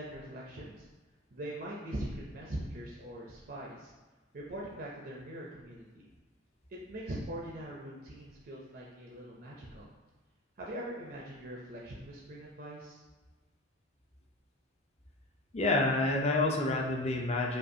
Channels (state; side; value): normal; both; correlation 0.31